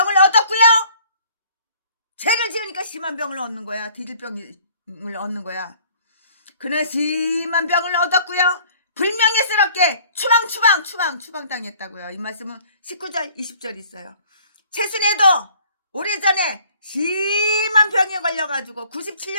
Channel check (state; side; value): inverted; both; correlation -0.55